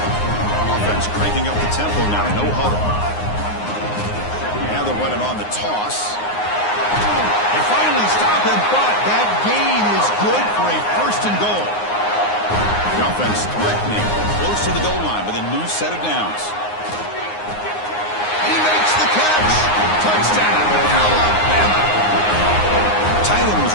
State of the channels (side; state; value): right; late; 9.6 ms